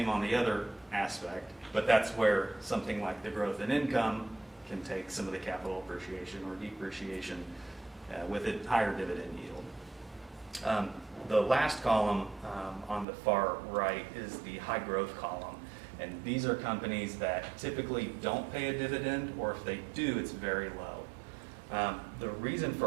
on the other aspect, but that's where something like the growth in income can take some of the capital appreciation or depreciation with a higher dividend yield. The last column on the far right is the high growth column, and these are companies that typically don't pay a dividend, or if they do, it's very low. The reason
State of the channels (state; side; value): drops out; left; at 13.1 s